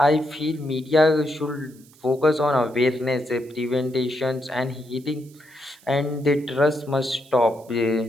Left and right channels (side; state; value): right; noise; hiss, 27 dB below the sound